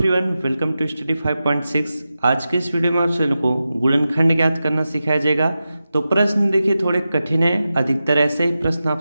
welcome to study 5.6। आज के इस वीडियो में आप सभी को गुणनखंड ज्ञात करना सिखाया जाएगा। तो प्रश्न देखिए थोड़े कठिन है, अधिकतर ऐसे ही प्रश्न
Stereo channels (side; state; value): both; inverted; correlation -0.92